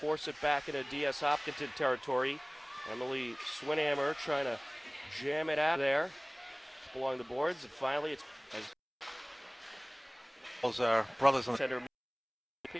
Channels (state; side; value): identical; both; correlation 1.00